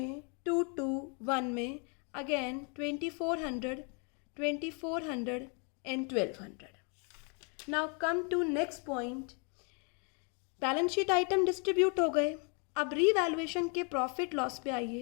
2:1 में, again 2400 and 1200। Now come to next point, balance sheet item distribute हो गए। अब रीवैल्यूएशन के प्रॉफिट लॉस पे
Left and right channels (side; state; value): right; quieter; 37.0 dB